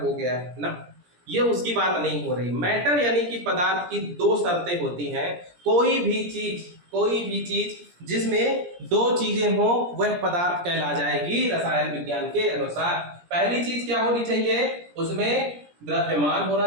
गया है ना, ये उसकी बात नहीं हो रही। मैटर यानी कि पदार्थ की 2 शर्तें होती हैं। कोई भी चीज जिसमें 2 चीजें हो वह पदार्थ कहला जाएगी रसायन विज्ञान के अनुसार। पहली चीज क्या होनी चाहिए, उसमें द्रव्यमान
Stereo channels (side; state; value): left; late; 17 ms